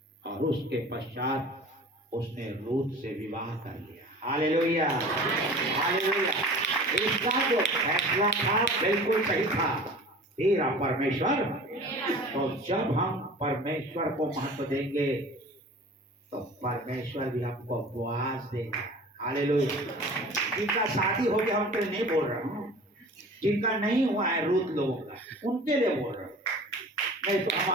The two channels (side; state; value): both; normal; correlation 0.41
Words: और उसके पश्चात उसने रूत से विवाह कर लिया। Hallelujah, hallelujah. इसका जो फैसला था बिल्कुल सही था, तेरा परमेश्वर। तो जब हम परमेश्वर को महत्व देंगे तो परमेश्वर भी हमको बोआज देगा। हालेलुया। जिनका शादी हो गया उनके लिए नहीं बोल रहा हूँ, जिनका नहीं हुआ है रूत लोगों का, उनके लिए बोल रहा हूँ। नहीं तो